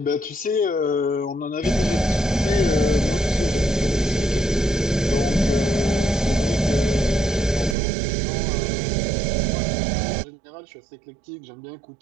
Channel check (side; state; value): left; drops out; at 7.8 s